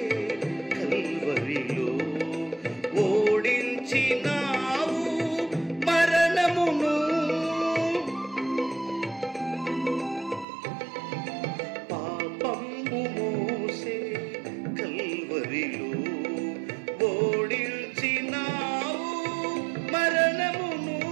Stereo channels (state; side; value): drops out; left; at 10.5 s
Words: కల్వరిలో ఓడించినావు మరణమును. పాపము మోసే కల్వరిలో ఓడించినావు మరణమును.